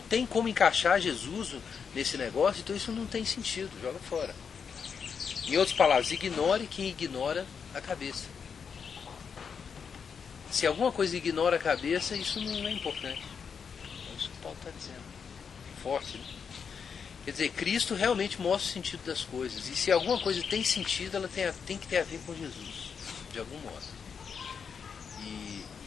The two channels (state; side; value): quieter; right; 6.4 dB